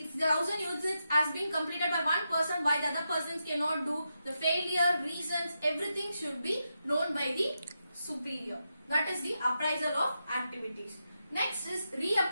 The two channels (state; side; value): inverted; both; correlation -0.86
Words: the 1000 units has been completed by one person, why the other persons cannot do, the failure, reasons, everything should be known by the superior. That is the appraisal of activities. Next is